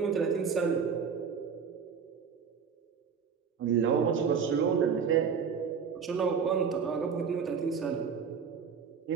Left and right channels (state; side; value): quieter; left; 6.4 dB